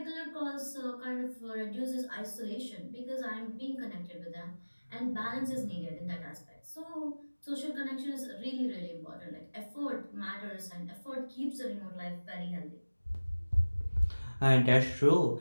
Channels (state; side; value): inverted; both; correlation -1.00